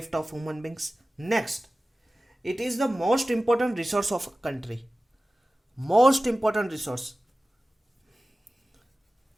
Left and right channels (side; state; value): both; normal; correlation 0.96